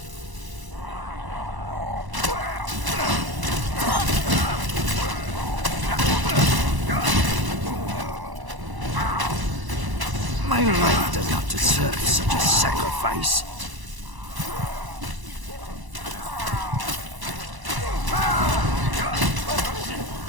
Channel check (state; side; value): late; left; 1.0 ms